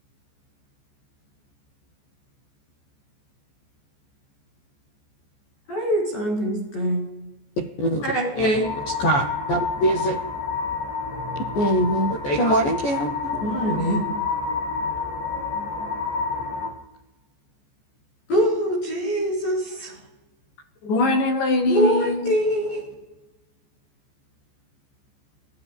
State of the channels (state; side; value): late; right; 14 ms